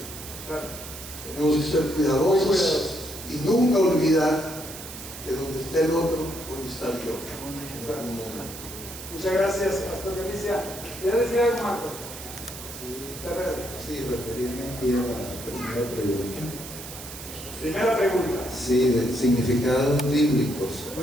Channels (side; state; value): right; noise; hiss, 12 dB below the sound